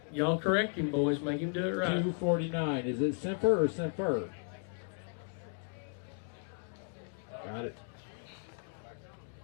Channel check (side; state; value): right; silent; 54 dB below the other